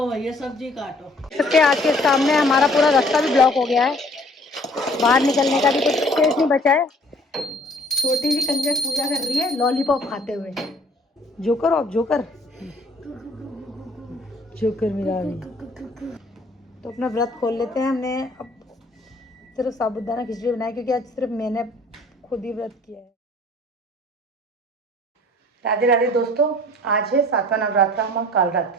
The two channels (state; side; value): normal; both; correlation 0.55